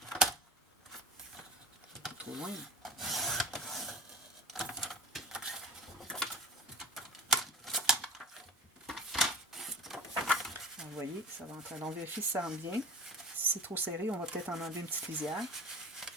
Pas trop loin. Vous voyez, ça va entrer. Alors, on vérifie si ça rentre bien. Si c'est trop serré, on va peut-être en enlever une petite lisière.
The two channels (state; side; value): normal; both; correlation 0.35